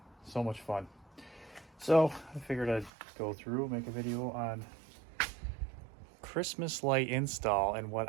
So much fun. So I figured I'd go through, make a video on Christmas light install and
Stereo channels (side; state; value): left; drops out; at 2.9 s